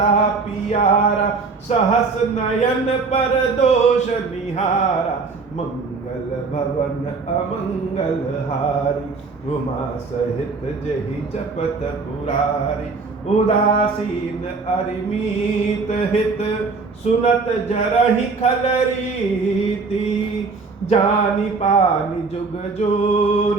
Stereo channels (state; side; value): quieter; left; 4.4 dB